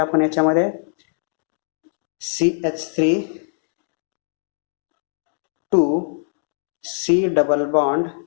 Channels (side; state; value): right; silent; digital silence